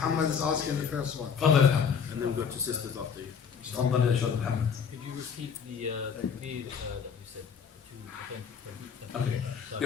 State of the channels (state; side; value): quieter; right; 6.7 dB